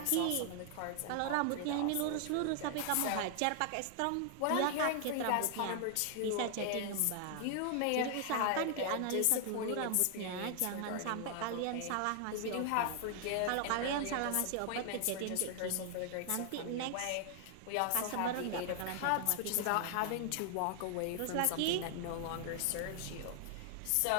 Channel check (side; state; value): both; different; correlation 0.00